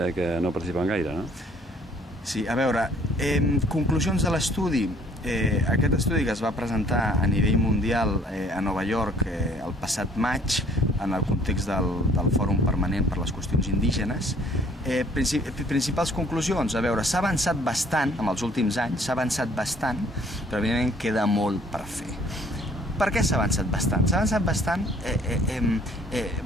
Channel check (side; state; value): both; normal; correlation 0.58